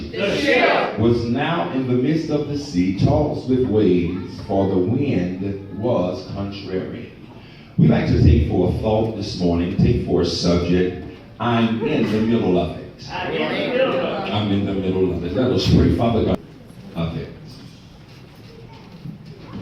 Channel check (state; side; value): identical; both; correlation 1.00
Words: The ship was now in the midst of the sea, tossed with waves, for the wind was contrary. We like to take for a thought this morning, take for a subject, I'm in the middle of it. I'm in the middle of it. I'm in the middle of it. Let us pray. Father God, of it.